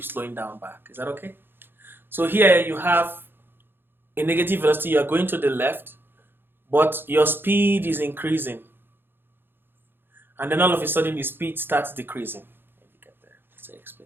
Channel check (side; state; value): left; late; 0.10 ms